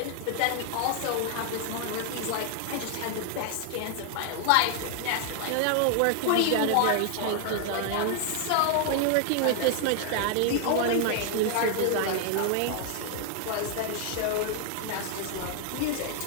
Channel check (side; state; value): both; different; correlation 0.00